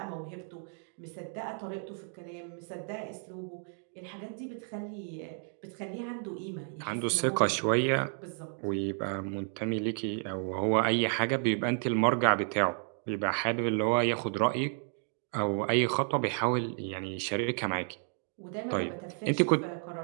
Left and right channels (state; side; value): silent; left; 55 dB below the other